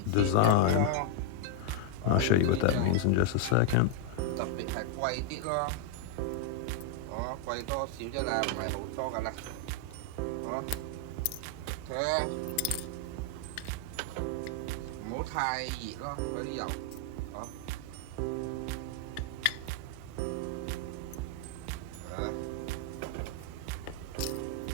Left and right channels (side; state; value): both; different; correlation 0.01